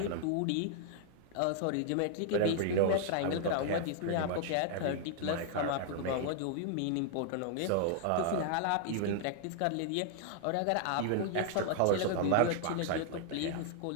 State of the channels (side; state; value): both; different; correlation 0.00